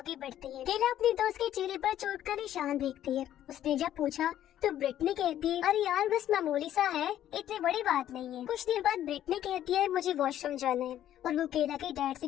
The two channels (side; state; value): right; quieter; 11.7 dB